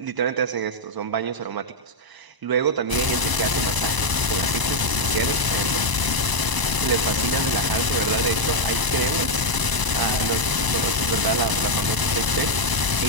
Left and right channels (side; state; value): left; late; 1.0 ms